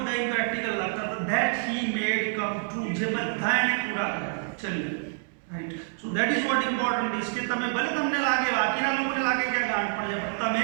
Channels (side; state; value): left; silent; 60 dB below the other